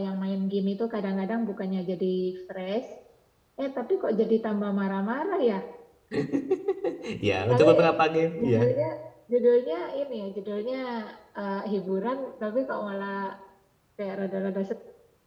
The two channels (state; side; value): identical; both; correlation 1.00